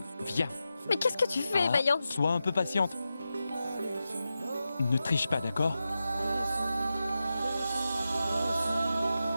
Mais qu'est-ce que tu fais, Ah, Mayank? sois un peu patiente. Ne triche pas, d'accord?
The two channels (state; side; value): inverted; both; correlation -0.91